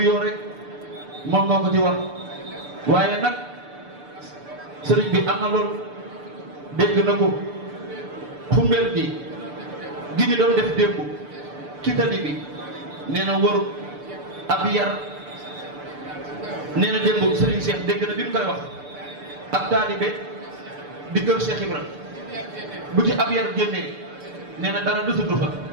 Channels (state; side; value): late; left; 6.8 ms